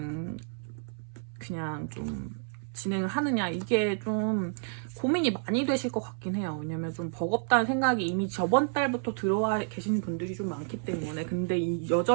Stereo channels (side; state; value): left; silent; 58 dB below the other